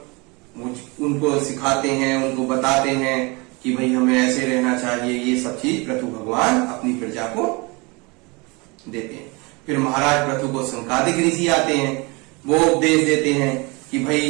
उनको सिखाते हैं, उनको बताते हैं कि भाई हमें ऐसे रहना चाहिए। ये सब चीज प्रभु भगवान अपनी प्रजा को देते हैं। फिर महाराज प्रभु को संकादिक ऋषि आते हैं, वो उपदेश देते हैं कि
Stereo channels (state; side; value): quieter; left; 27.4 dB